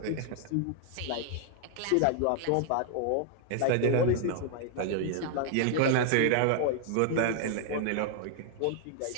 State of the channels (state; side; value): different; both; correlation 0.00